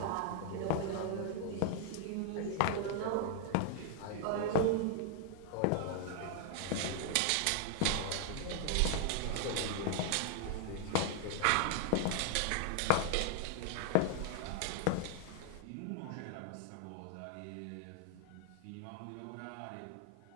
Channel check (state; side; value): different; both; correlation 0.00